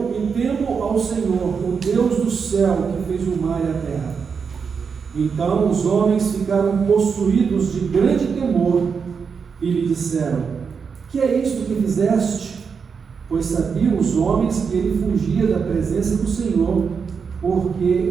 e temo ao Senhor, o Deus do céu, que fez o mar e a terra. Então os homens ficaram possuídos de grande temor e lhe disseram: que é isto que fizeste? Pois sabiam os homens que ele fugia da presença do Senhor,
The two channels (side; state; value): left; quieter; 5.9 dB